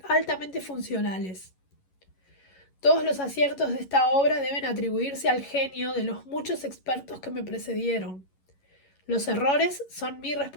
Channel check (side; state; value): right; late; 11 ms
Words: altamente funcionales. Todos los aciertos de esta obra deben atribuirse al genio de los muchos expertos que me precedieron. Los errores son mi